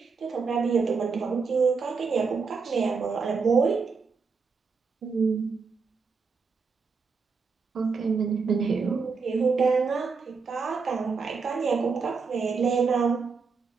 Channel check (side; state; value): left; quieter; 5.0 dB